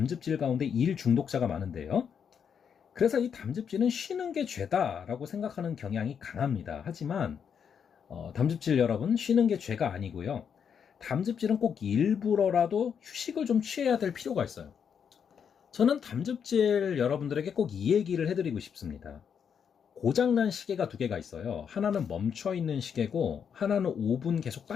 가운데 일 중독자가 많은데요. 그래서 이 담즙질은 쉬는 게 죄다라고 생각하는 경향이 강합니다. 하지만 담즙질 여러분, 쉬는 게 죄가 아니고요. 담즙질은 꼭 일부러라도 휴식을 좀 취해야 될 필요가 있어요. 저는 담즙질 여러분들에게 꼭 이 얘기를 해드리고 싶습니다. 고장난 시계가 두 개가 있어요. 하나는 멈춰있는 시계고 하나는 5분 계속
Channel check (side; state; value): right; quieter; 7.4 dB